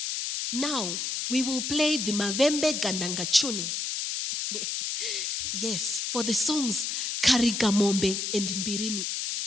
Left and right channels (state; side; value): noise; left; hiss, 2 dB below the sound